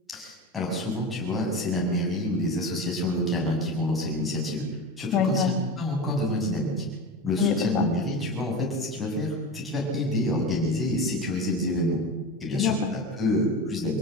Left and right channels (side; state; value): both; normal; correlation 0.26